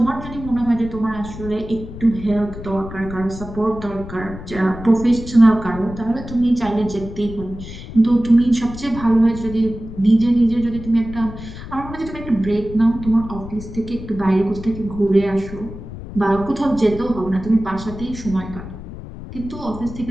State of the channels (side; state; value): left; noise; rumble, 12 dB below the sound